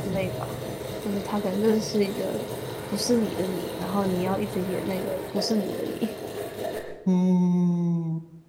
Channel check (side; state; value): both; identical; correlation 1.00